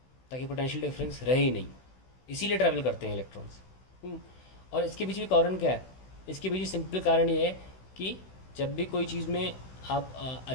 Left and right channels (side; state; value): right; late; 16 ms